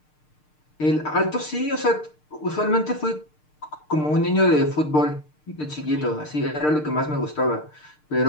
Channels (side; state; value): right; late; 6.6 ms